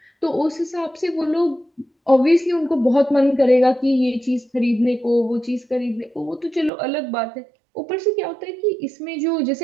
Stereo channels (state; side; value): drops out; left; at 6.7 s